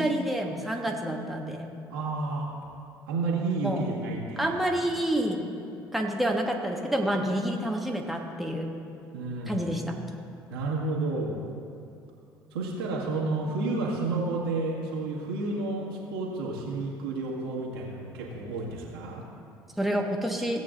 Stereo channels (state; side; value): normal; both; correlation 0.58